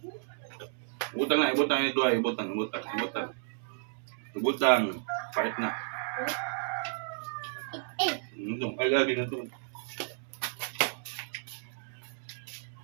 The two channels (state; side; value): silent; left; digital silence